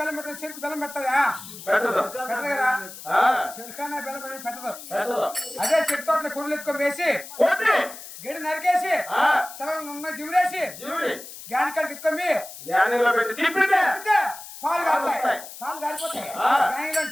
పెట్టదు. చెరుకు బెల్లం పెట్టదా? పెట్టదు కదా. చెరుకానే బెల్లం పెట్టి పెట్టదు. అదే చెట్టు తోటలో కొడులు ఎత్తుకొని వేసి గడి నరికేసి చల్ల జిమిరేసి గ్యాన్ కాడికి ఎత్తుకొని పాలు కారుతాయి. పాలు కారిపోతాయి.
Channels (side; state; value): left; noise; hiss, 14 dB below the sound